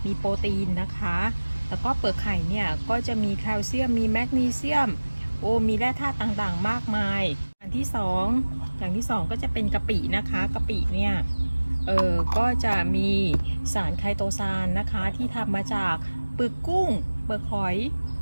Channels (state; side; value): inverted; both; correlation -1.00